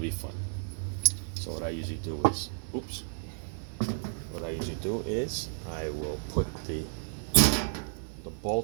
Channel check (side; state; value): left; silent; digital silence